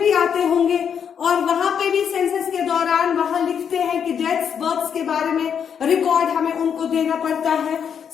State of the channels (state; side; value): quieter; right; 7.7 dB